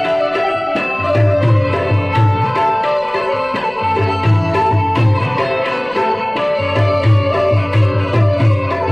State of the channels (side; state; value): left; noise; rumble, 28 dB below the sound